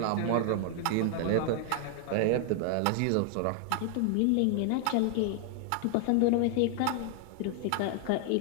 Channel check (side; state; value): both; different; correlation 0.00